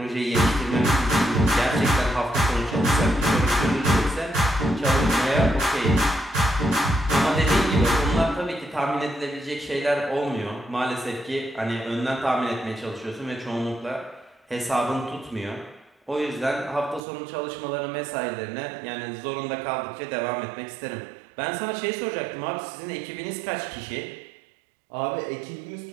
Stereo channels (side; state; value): left; drops out; at 17.0 s